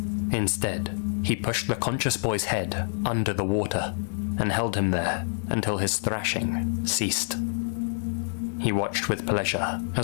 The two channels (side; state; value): right; silent; 60 dB below the other